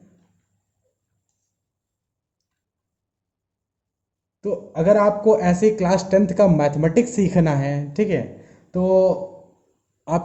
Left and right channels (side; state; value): both; identical; correlation 1.00